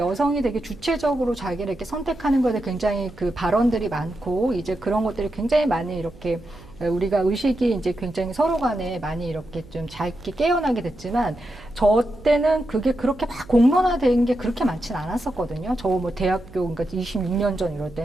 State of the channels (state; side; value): noise; right; hum, 21 dB below the sound